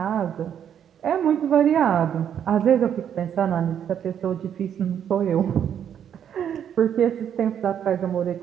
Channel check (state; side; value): quieter; left; 9.0 dB